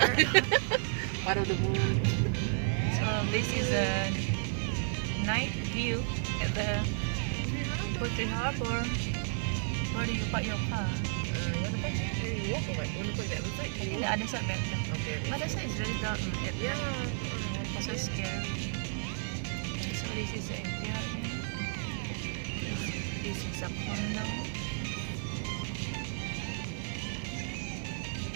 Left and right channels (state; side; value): silent; left; digital silence